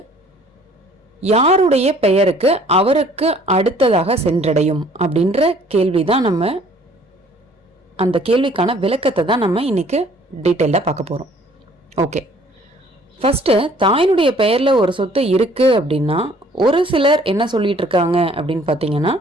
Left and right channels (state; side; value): normal; both; correlation 0.57